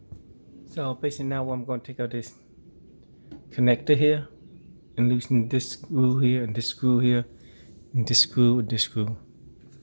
So basically now I'm gonna take out this connector here and loosen this screw here and this screw here and this screw and this screw.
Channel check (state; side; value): inverted; both; correlation -1.00